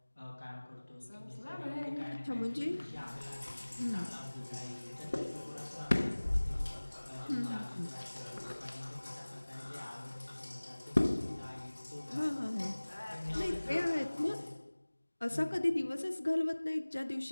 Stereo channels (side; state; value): both; inverted; correlation -1.00